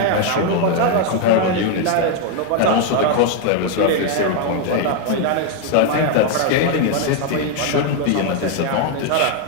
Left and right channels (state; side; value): different; both; correlation 0.01